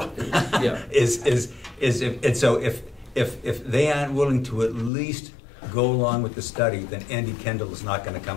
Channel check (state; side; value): drops out; right; at 4.9 s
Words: Yeah. Is if, and so if they aren't willing to at least go along with the study, then Andy Kendall is not gonna